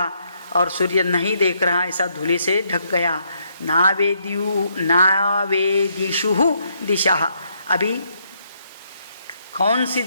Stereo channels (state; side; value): inverted; both; correlation -0.74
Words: और सूर्य नहीं देख रहा, ऐसा धूले से ढक गया। नावेदिषु दिशा, अभी कौन सी